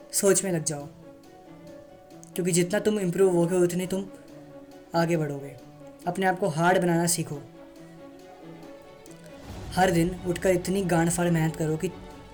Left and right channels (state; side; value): identical; both; correlation 1.00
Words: सोच में लग जाओ, क्योंकि जितना तुम इम्प्रूव होगे उतने तुम आगे बढ़ोगे। अपने आप को हार्ड बनाना सीखो। हर दिन उठकर इतनी गांड फाड़ मेहनत करो कि